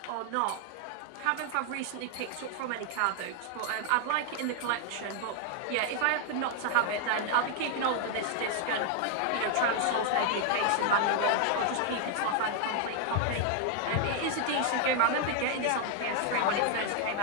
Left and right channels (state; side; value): different; both; correlation 0.00